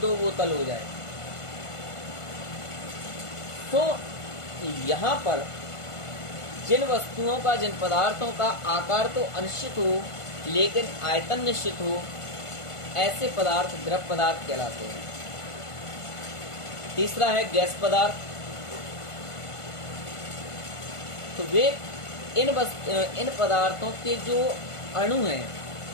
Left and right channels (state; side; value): late; right; 1.5 ms